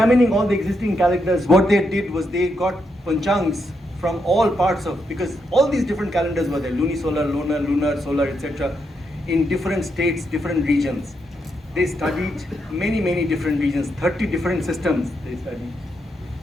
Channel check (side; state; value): both; normal; correlation 0.81